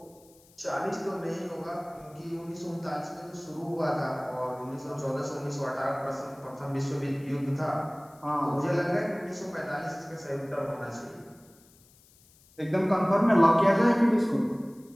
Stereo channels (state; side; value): noise; left; hiss, 28 dB below the sound